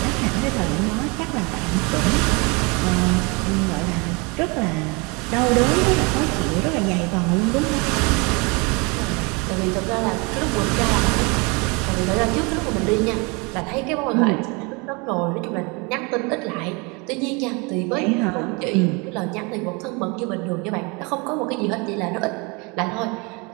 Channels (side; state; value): left; quieter; 29.2 dB